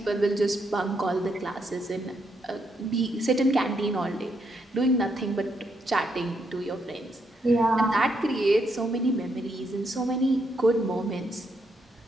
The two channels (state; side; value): normal; both; correlation 0.77